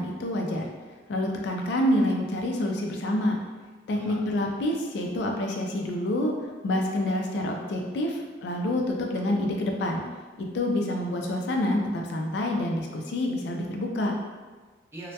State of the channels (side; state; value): both; normal; correlation 0.60